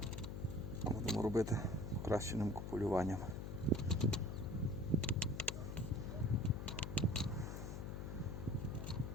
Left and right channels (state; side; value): noise; left; hum, 6 dB below the sound